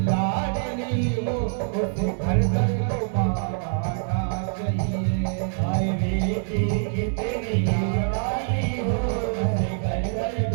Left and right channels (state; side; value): silent; left; digital silence